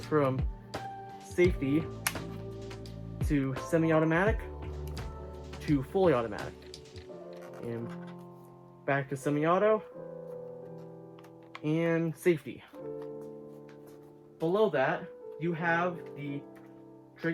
from safety to semi-automatic to fully automatic. And back to semi-auto and safety. Below that, you have the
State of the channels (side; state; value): both; identical; correlation 1.00